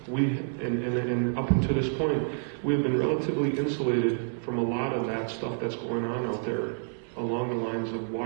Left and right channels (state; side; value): silent; left; 59 dB below the other